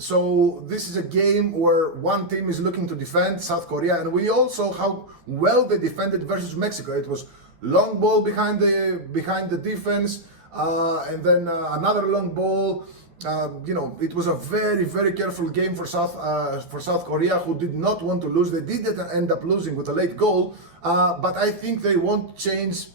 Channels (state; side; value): late; left; 12 ms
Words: this is a game where one team is looking to defend, South Korea, and we all saw how well they defended versus Mexico. It was long ball behind the defense, and then another long ball. It was a very, very careful game for South Korea, who did not want to lose. They did end up losing with a late goal, but I think they won't change